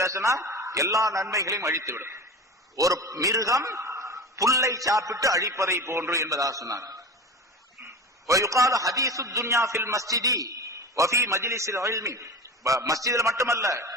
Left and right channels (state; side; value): normal; both; correlation 0.31